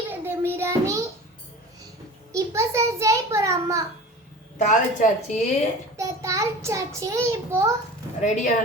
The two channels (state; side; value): normal; both; correlation 0.37